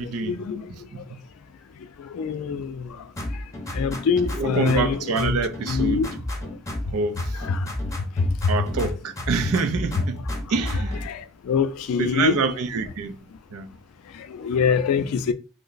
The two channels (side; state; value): both; normal; correlation 0.35